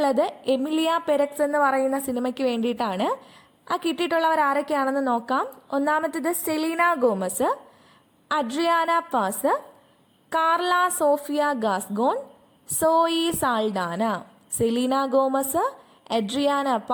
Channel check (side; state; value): both; identical; correlation 1.00